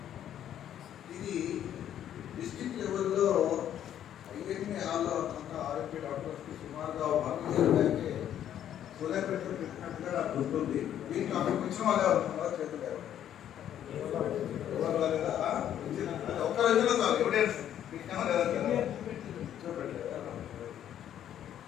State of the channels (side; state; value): right; quieter; 10.6 dB